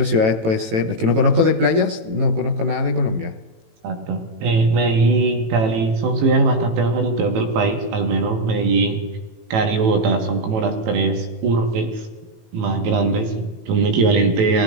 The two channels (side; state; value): left; late; 18 ms